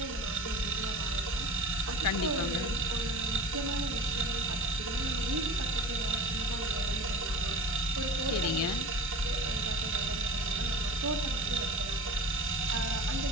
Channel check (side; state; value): both; normal; correlation 0.39